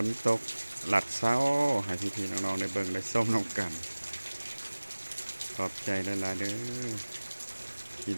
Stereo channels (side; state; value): both; inverted; correlation -1.00